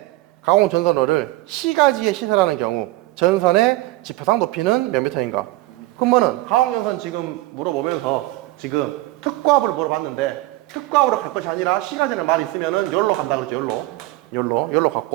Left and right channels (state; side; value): quieter; left; 19.0 dB